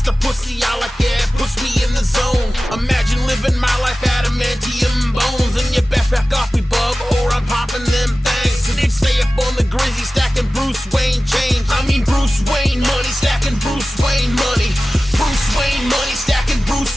the pussy I like, yeah, it puts me in the zone. Imagine living my life adamantium bones. And you best back off me, bub, or I'm popping them things. So they stay up on the Grizzy, stacking Bruce Wayne change. I mean Bruce Wayne money, stacking Bruce Wayne money. Bruce Wayne money, stacking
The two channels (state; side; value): normal; both; correlation 0.96